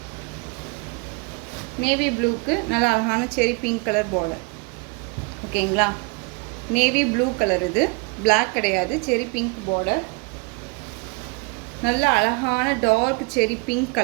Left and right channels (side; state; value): left; quieter; 29.0 dB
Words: நேவி ப்ளூக்கு நல்லா அழகான செரி பிங்க் கலர் பார்டர். ஓகேங்களா. நேவி ப்ளூ கலர், இது பிளாக் கிடையாது, செரி பிங்க் பார்டர். நல்ல அழகான டார்க் செரி pink